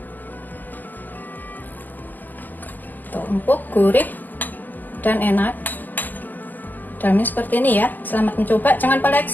Tuh, empuk, gurih, dan enak. Dalamnya seperti ini ya. Selamat mencoba. Jangan lupa like,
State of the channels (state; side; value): late; right; 0.085 ms